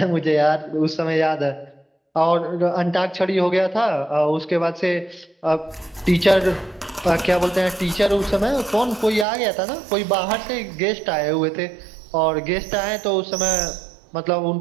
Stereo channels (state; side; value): drops out; left; at 9.2 s